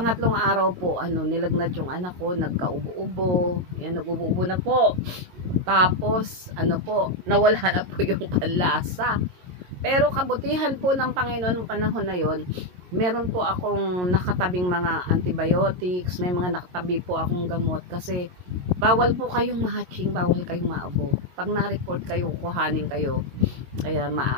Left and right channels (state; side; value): late; left; 22 ms